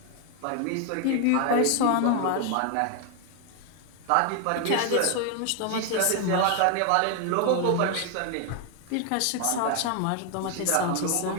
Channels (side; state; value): both; different; correlation 0.00